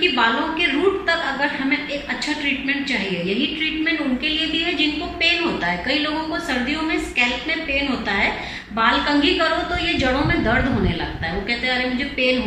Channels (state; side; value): identical; both; correlation 1.00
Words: बालों के रूट तक अगर हमें एक अच्छा ट्रीटमेंट चाहिए। यही ट्रीटमेंट उनके लिए भी है जिनको पेन होता है। कई लोगों को सर्दियों में स्कैल्प में पेन होता है, बाल कंघी करो तो ये जड़ों में दर्द होने लगता है, वो कहते हैं अरे मुझे पेन